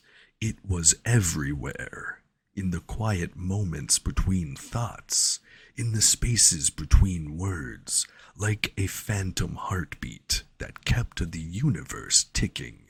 It was everywhere, in the quiet moments between thoughts, in the spaces between words, like a phantom heartbeat that kept the universe ticking.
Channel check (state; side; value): identical; both; correlation 1.00